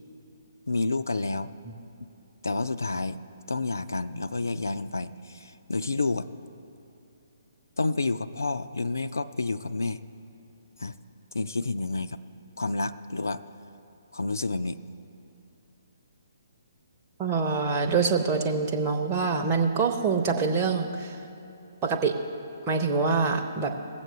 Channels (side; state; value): both; inverted; correlation -0.56